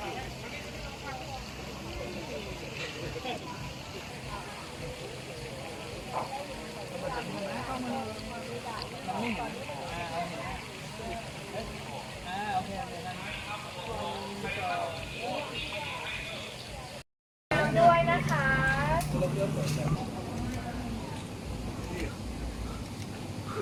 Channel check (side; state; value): both; identical; correlation 1.00